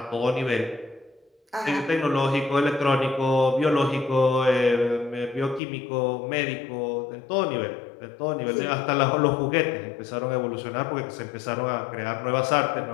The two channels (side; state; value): right; drops out; at 5.6 s